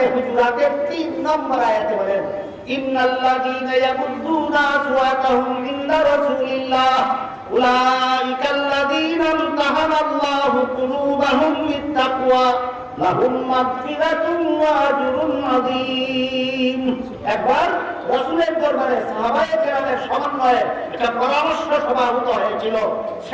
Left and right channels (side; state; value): both; identical; correlation 1.00